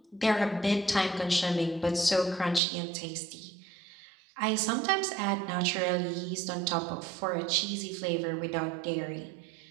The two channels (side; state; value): left; drops out; at 2.6 s